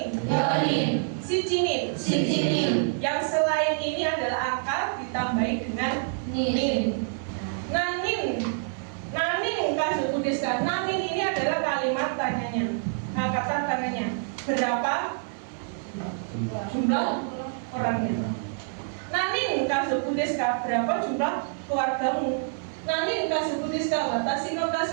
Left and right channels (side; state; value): left; silent; 59 dB below the other